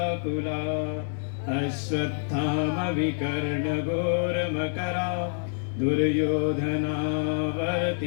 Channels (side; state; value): right; silent; 60 dB below the other